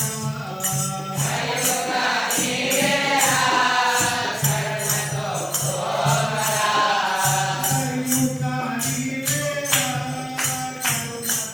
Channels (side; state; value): both; identical; correlation 1.00